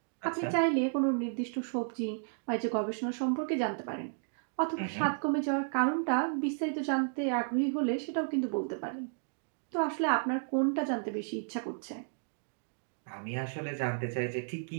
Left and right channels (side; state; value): left; silent; digital silence